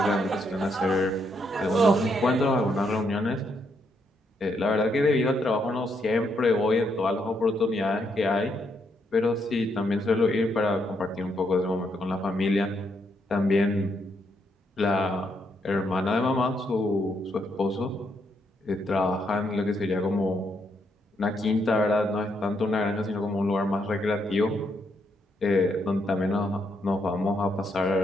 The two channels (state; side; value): normal; both; correlation 0.76